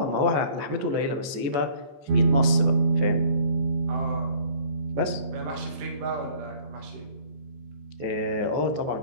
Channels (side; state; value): left; late; 14 ms